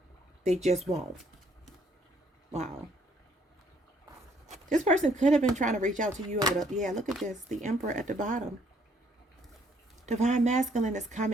They just won't. Wow. This person could have been trying to reach out to you over the, yeah, look at this. The Emperor at the bottom. Divine masculine is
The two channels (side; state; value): both; normal; correlation 0.66